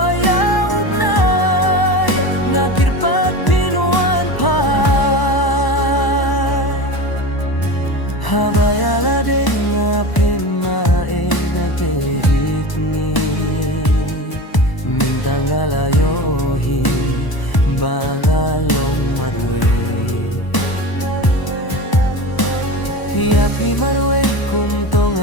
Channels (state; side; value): late; right; 1.0 ms